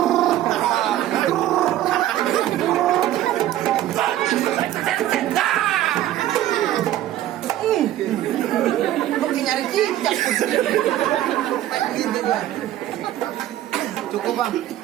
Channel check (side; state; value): left; quieter; 13.3 dB